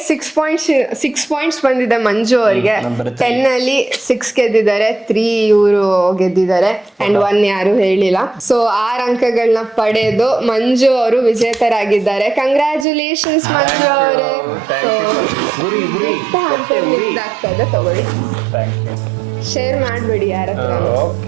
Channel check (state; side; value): drops out; left; at 12.9 s